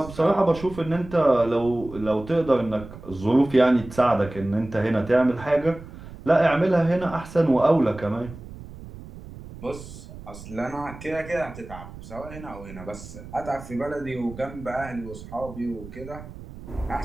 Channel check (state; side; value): noise; right; rumble, 15 dB below the sound